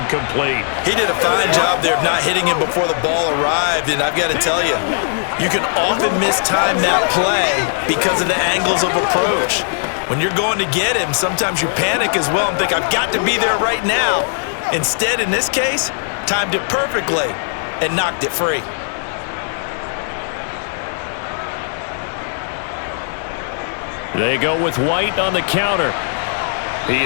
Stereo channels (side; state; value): right; silent; 64 dB below the other